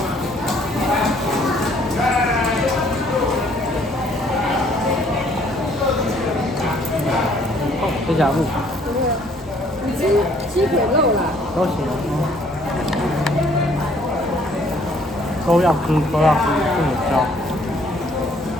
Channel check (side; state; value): both; normal; correlation 0.61